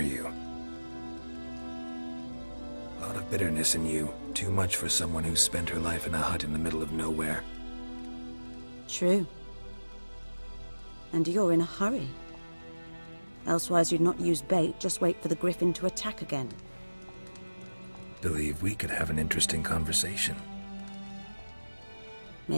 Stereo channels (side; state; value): both; inverted; correlation -1.00